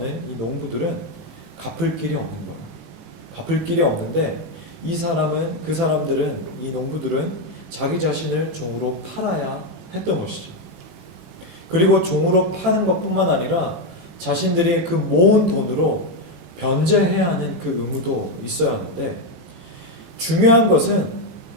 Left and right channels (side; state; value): left; late; 18 ms